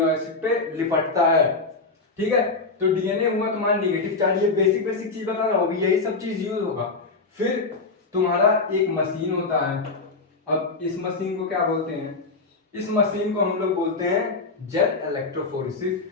एसिड पे लिपटता है, ठीक है। तो डीएनए हुआ तुम्हारा नेगेटिव चार्ज, ये बेसिक चीज बता रहा हूँ, यही सब चीज यूज होगा। फिर तुम्हारा एक मशीन होता है, अब इस मशीन को क्या बोलते हैं, इस मशीन को हम लोग बोलते हैं जेल इलेक्ट्रोफोरेसिस।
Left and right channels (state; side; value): quieter; right; 3.8 dB